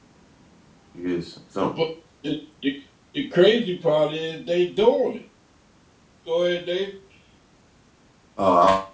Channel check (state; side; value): identical; both; correlation 1.00